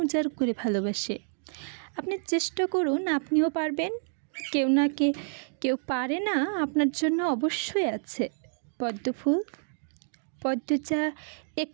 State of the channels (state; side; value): silent; left; digital silence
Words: উজাড় করে ভালোবাসে। আপনি চেষ্টা করুন, আপনিও পারবেন। কেউ পারে না, আপনার জন্য অবশ্যই আছে। পদ্মফুল। পদ্মজা